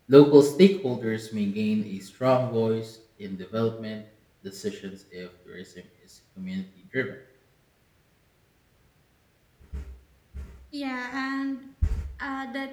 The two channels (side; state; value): both; identical; correlation 1.00